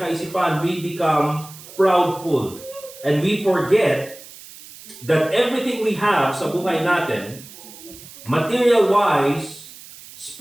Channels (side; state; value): right; noise; hiss, 18 dB below the sound